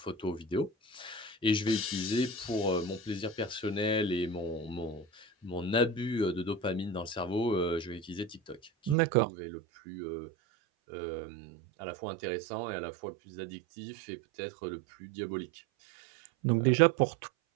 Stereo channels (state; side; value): drops out; left; at 9.0 s